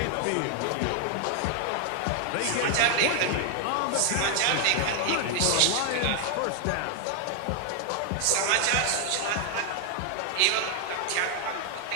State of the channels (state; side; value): different; both; correlation 0.00